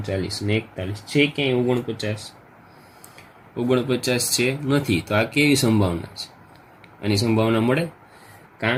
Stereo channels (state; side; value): identical; both; correlation 1.00